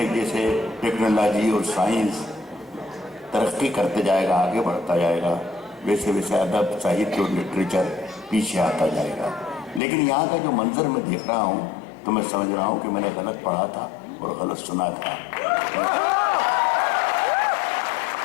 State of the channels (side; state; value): right; drops out; at 9.8 s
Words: जैसे टेक्नोलॉजी और साइंस तरक्की करते जाएगा, आगे बढ़ता जाएगा, वैसे वैसे अदब, साहित्य और लिटरेचर पीछे आता जाएगा। लेकिन यहाँ का जो मंजर मैं देख रहा हूँ तो मैं समझ रहा हूँ कि मैंने गलत पढ़ा था और गलत सुना था।